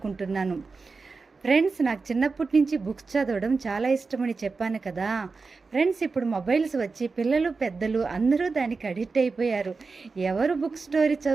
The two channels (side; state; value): left; quieter; 4.3 dB